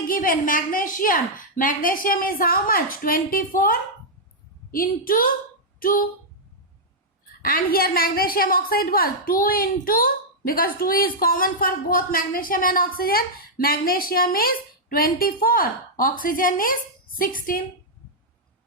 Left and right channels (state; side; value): normal; both; correlation -0.07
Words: given magnesium. Magnesium is how much? 24 into 2. And here magnesium oxide was 2 into, because 2 is common for both magnesium and oxygen. Magnesium is 24. Oxygen is 16.